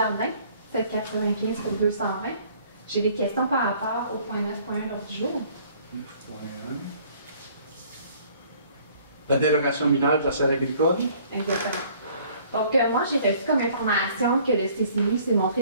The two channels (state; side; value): inverted; both; correlation -0.57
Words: 795 pour 220. J'ai des questions par rapport au point 9.1 l'ordre du jour. 9.1. La dérogation mineure de la serre agricole. Exactement. Donc, moi, j'ai reçu comme information que le CCI s'est